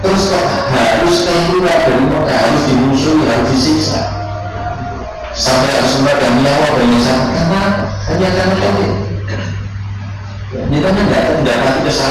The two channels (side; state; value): both; identical; correlation 1.00